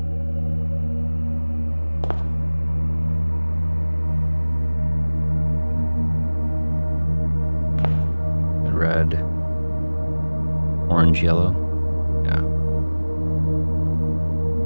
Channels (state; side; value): inverted; both; correlation -1.00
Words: Red, orange, yellow. Yeah.